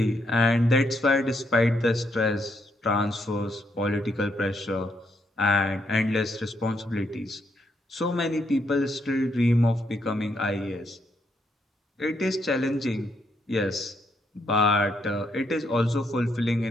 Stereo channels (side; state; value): both; normal; correlation 0.76